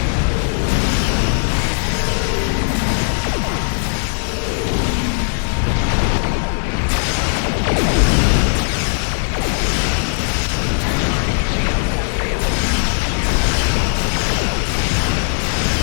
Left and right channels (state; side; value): silent; right; digital silence